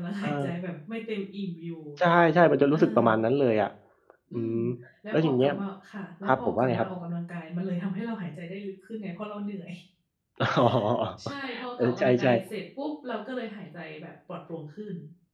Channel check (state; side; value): identical; both; correlation 1.00